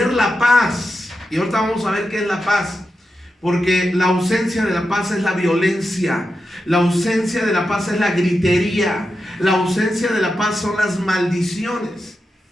la paz. Y ahorita vamos a ver qué es la paz. Porque la ausencia de la paz es la violencia, la ausencia de la paz es la gritería, la ausencia de la paz son las maldiciones,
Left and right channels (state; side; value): normal; both; correlation 0.89